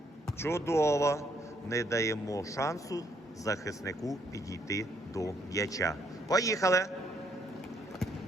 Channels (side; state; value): both; normal; correlation 0.70